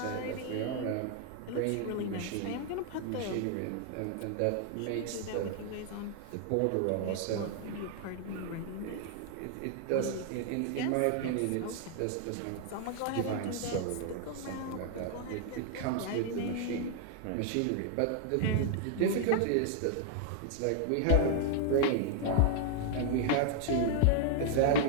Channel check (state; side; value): different; both; correlation 0.00